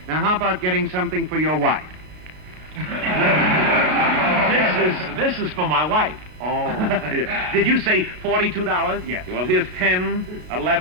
Now, how about getting something for your wife? This is for my wife. Oh. Did you say $42? Yes. Well, here's 10,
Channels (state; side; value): late; left; 32 ms